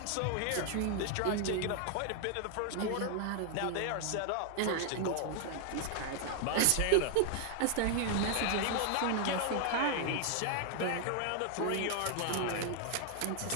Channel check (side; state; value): both; different; correlation 0.00